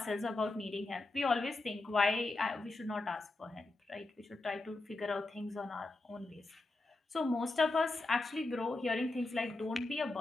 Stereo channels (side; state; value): right; quieter; 3.0 dB